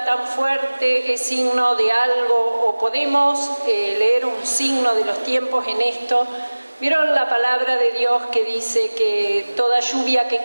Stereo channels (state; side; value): inverted; both; correlation -1.00